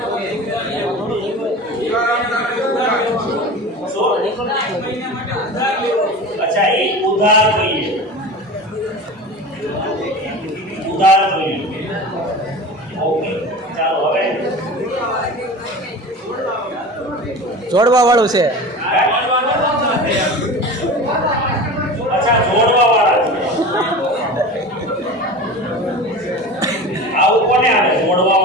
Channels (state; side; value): normal; both; correlation 0.33